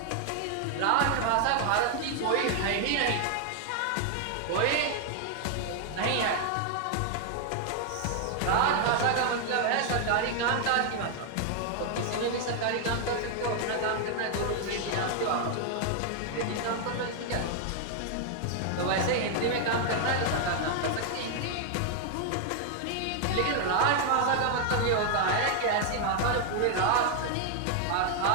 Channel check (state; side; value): different; both; correlation 0.00